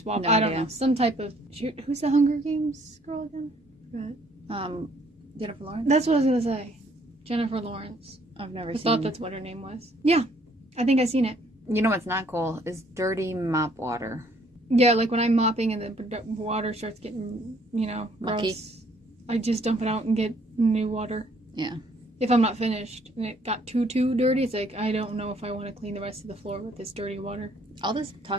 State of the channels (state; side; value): normal; both; correlation 0.63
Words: No I don't idea. know. Some type of who's the Hunger Games girl again? Jennifer Lawrence? That's what I was gonna say. Jennifer Lawrence. I've never I seen thought that's what her name was. Yeah. I think I've seen it. You know what's not cool is dirty mop water. Yeah, like when I'm mopping and the water starts getting, mucky. Gross, I just dump it out and get new water. Yeah. If I'm not finished and it got too dirty, it's like, I don't know if I want to clean the rest of the floor with this dirty water. All this